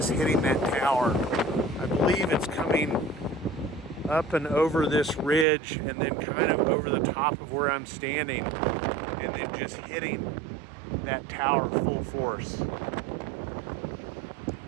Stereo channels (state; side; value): drops out; left; at 5.5 s